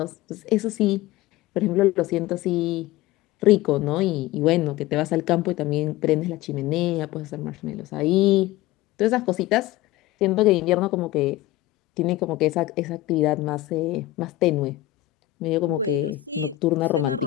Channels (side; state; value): right; quieter; 16.1 dB